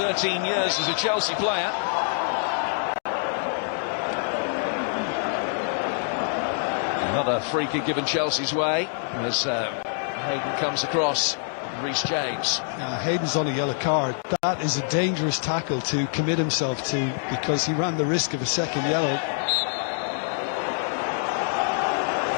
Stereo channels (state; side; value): silent; right; digital silence